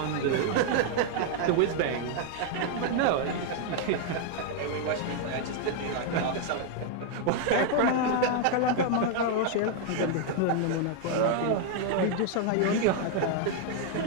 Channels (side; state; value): both; different; correlation 0.00